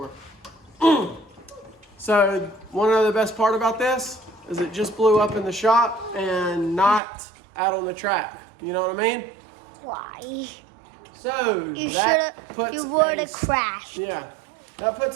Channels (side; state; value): left; drops out; at 7.0 s